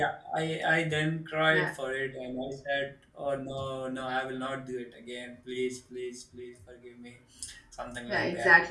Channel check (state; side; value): identical; both; correlation 1.00